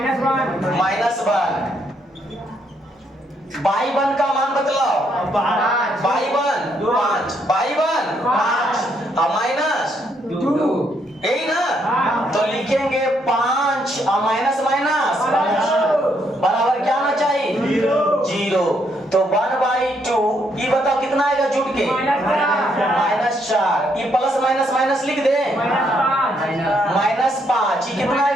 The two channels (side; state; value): both; normal; correlation 0.73